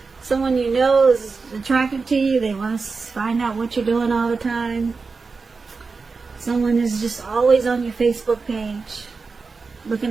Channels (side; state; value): left; quieter; 4.5 dB